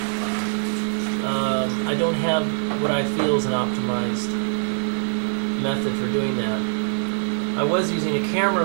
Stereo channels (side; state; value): left; silent; 62 dB below the other